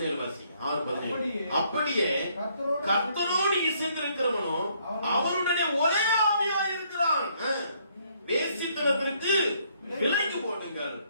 வாசி. 6:17. அப்படியே கர்த்தரோடு இசைந்திருக்கிறவனோ அவருடனே ஒரே ஆவியா இருக்கிறான். வேசித்தனத்திற்கு விலகி போடுங்கள்.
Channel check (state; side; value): inverted; both; correlation -0.68